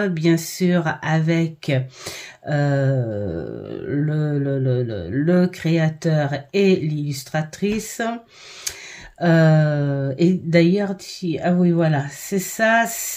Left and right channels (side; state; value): both; identical; correlation 1.00